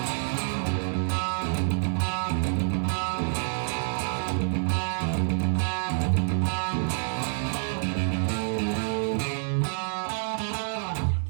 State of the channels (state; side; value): silent; left; 59 dB below the other